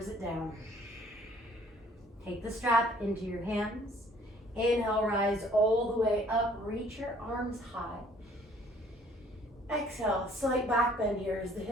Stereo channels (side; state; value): both; normal; correlation 0.58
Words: it down. Take the strap into your hands. Inhale, rise all the way up, reach your arms high. Exhale, slight back bend here as the